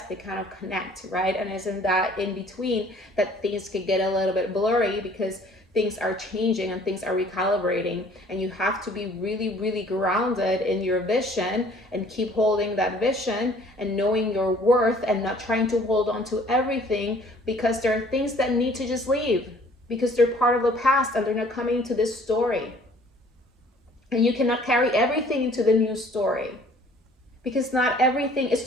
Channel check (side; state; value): both; normal; correlation 0.55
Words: they kind of connect, right? And it's in that in between that things can get a little bit blurry because things are changing and things are recalibrating, and you have to be really, really grounded in your vision and keep holding that vision and knowing your worth and not trying to hold on to everything, because there are things that need to just leave because they're part of the past and they're not coming into this story. And you cannot carry everything into the new story because not everything